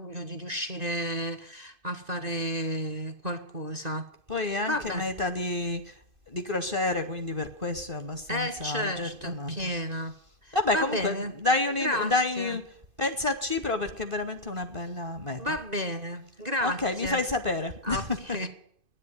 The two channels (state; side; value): late; left; 2.5 ms